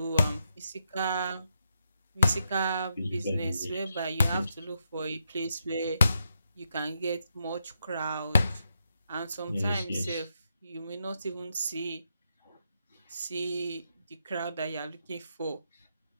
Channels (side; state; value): both; inverted; correlation -0.82